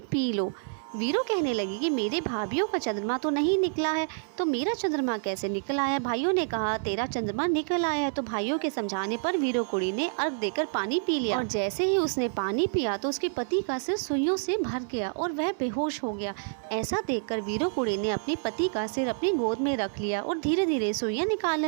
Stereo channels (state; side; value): silent; left; 57 dB below the other